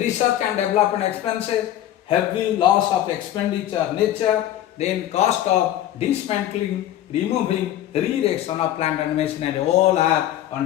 and development expenses, heavy loss of expenditure nature, then cost of dismantling, removing, re-erection of plant and machinery, all are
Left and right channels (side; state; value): right; quieter; 12.4 dB